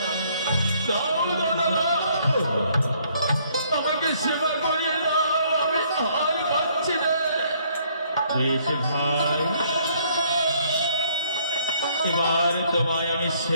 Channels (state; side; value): inverted; both; correlation -0.65